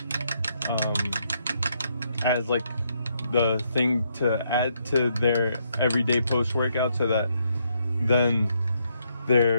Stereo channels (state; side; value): inverted; both; correlation -0.75